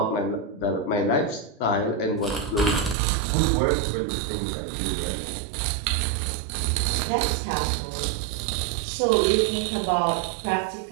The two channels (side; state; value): left; drops out; at 3.0 s